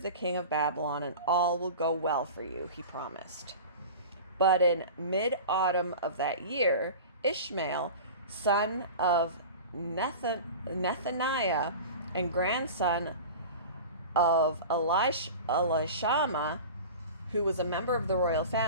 the king of Babylon, and all will go well for you, he promised. But in mid-autumn of that year, Ishmael, son of Nethaniah and grandson of Elishama, who was a member of the royal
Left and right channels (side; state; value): both; inverted; correlation -0.35